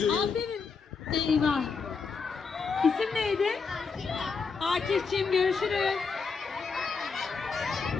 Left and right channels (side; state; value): right; quieter; 5.1 dB